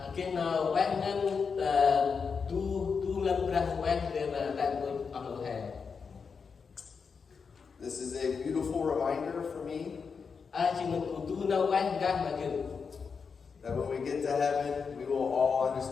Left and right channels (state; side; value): quieter; right; 5.6 dB